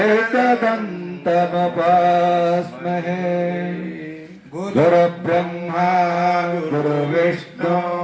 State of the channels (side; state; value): both; identical; correlation 1.00